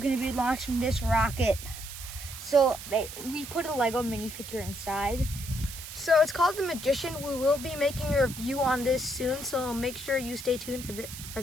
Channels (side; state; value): right; noise; hiss, 11 dB below the sound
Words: to be launching this rocket. So we put a Lego minifigure inside. So it's called the Magician. We will be making a review on this soon, so make sure you stay tuned for